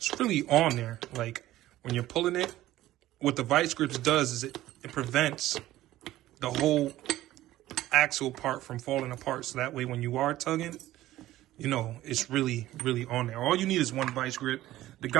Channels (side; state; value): left; quieter; 15.1 dB